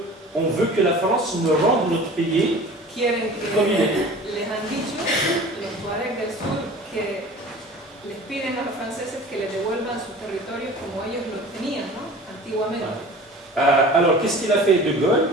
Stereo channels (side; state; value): both; normal; correlation 0.42